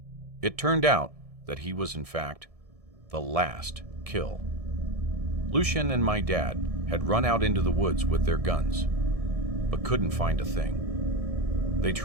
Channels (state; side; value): late; left; 1.7 ms